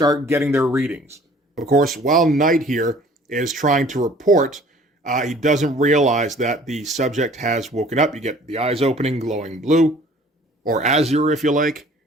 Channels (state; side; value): normal; both; correlation 0.52